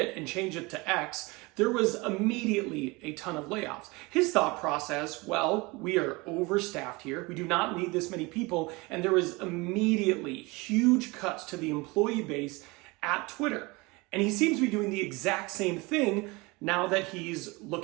and changed it to X, there was immediately a ton of layoffs. His thought process, well, we are overstaffed here. We do not need this many people. And there was immediately huge cuts to the employee base at Twitter. And he seems to be doing the exact same thing now that he's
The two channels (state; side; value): quieter; left; 24.8 dB